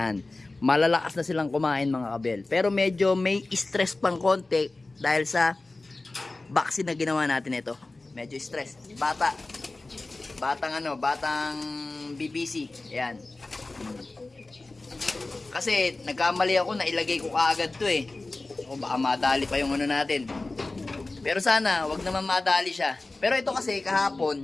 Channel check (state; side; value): quieter; right; 3.2 dB